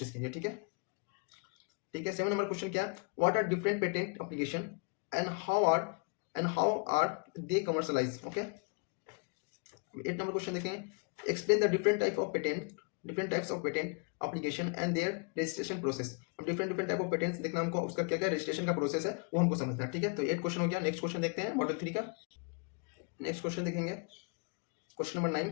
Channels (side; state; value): right; quieter; 35.1 dB